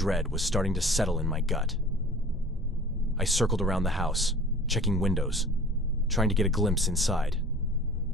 was starting to settle in my gut. I circled around the house, checking windows, trying to get a glimpse inside.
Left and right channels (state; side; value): normal; both; correlation 0.44